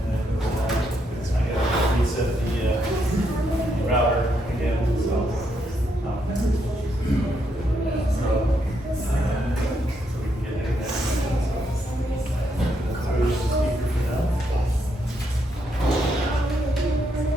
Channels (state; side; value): normal; both; correlation 0.78